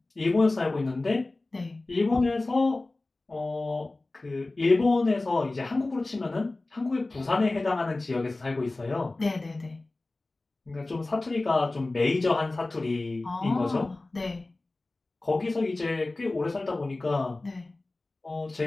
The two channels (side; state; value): right; quieter; 3.0 dB